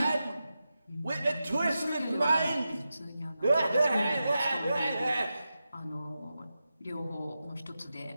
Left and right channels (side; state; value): both; inverted; correlation -0.91